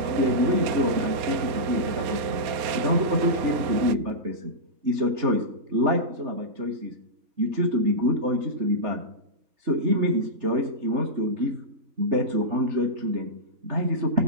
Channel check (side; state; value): left; late; 4.2 ms